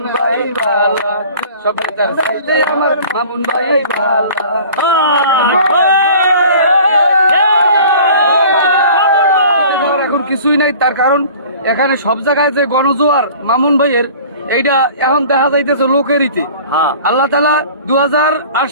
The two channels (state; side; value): inverted; both; correlation -0.46